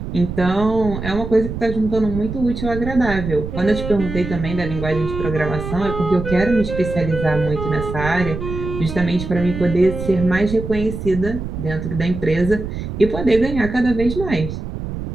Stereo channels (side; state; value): right; noise; rumble, 7 dB below the sound